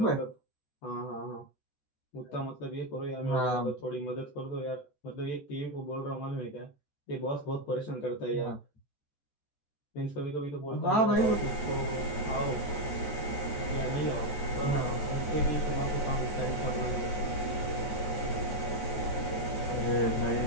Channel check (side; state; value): right; late; 14 ms